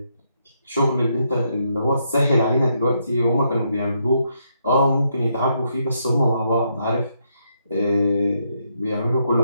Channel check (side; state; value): both; inverted; correlation -0.77